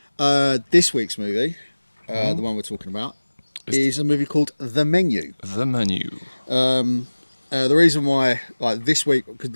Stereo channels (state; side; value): inverted; both; correlation -1.00